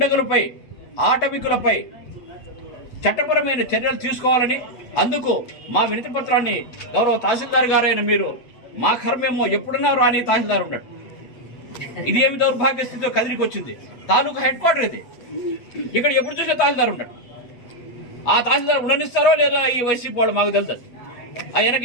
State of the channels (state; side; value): late; right; 8.0 ms